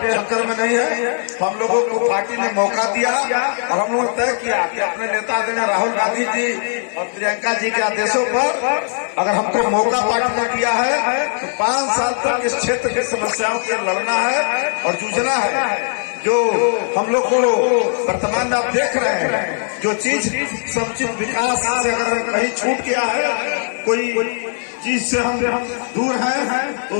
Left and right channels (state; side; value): silent; right; digital silence